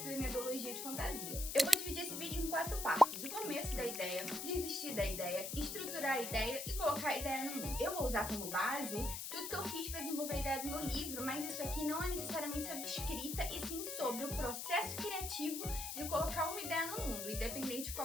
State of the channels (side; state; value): left; noise; hiss, 5 dB below the sound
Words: da minha biologia de fantasia. Eu vou dividir esse vídeo em 4 partes: o começo da ideia, desistir da ideia, estruturar a ideia e colocar a ideia no mundo. Eu vou usar como base tudo que eu fiz para desenvolver a ideia do meu livro, mas isso aqui não é necessariamente sobre escrita, e sim sobre o processo criativo de colocar uma ideia no mundo, independente de